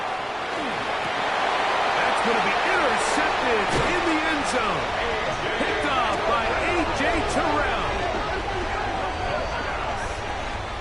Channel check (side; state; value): both; identical; correlation 1.00